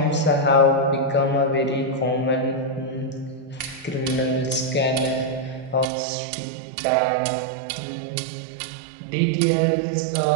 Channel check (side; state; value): left; drops out; at 5.9 s